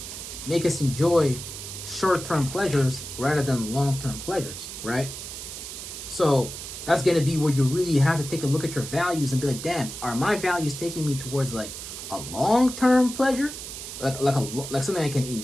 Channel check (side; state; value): right; noise; hiss, 9 dB below the sound